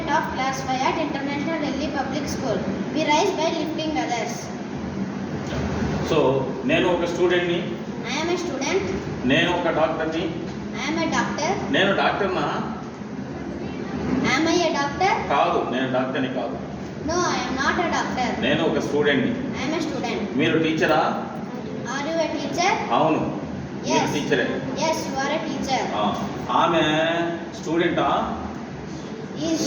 of class 5 at International Delhi Public School. We rise by lifting others. So నేను ఒక స్టూడెంట్ని, I am a student. నేను ఒక డాక్టర్ని. I am a doctor. నేను డాక్టర్నా? Am I a doctor? కాదు, నేను డాక్టర్ని కాదు. No, I am not a doctor. నేను ఒక స్టూడెంట్ని. I am a student. మీరు టీచరా? Are you a teacher? అవును, మీరు Yes. టీచరే. Yes, you are a teacher. ఆమె స్టూడెంటా? Is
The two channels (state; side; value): identical; both; correlation 1.00